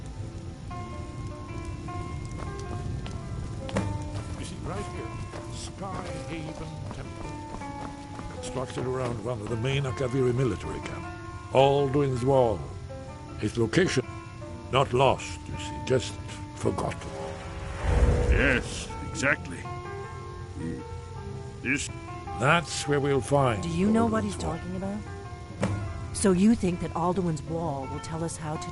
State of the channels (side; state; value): both; identical; correlation 1.00